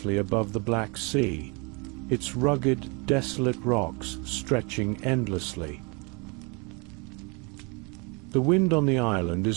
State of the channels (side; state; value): left; quieter; 31.0 dB